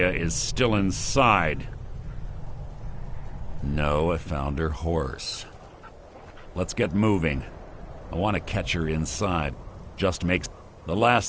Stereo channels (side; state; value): both; identical; correlation 1.00